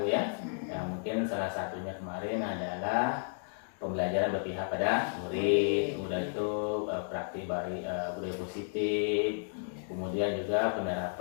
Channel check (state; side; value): silent; right; digital silence